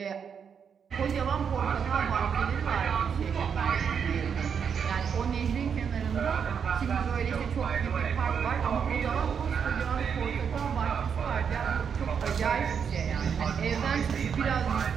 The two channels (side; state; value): left; quieter; 7.0 dB